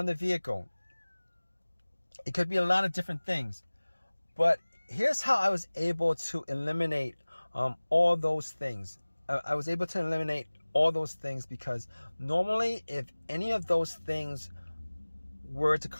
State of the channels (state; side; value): inverted; both; correlation -1.00